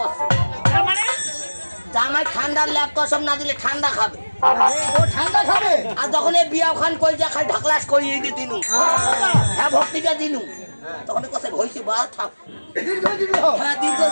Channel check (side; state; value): both; inverted; correlation -1.00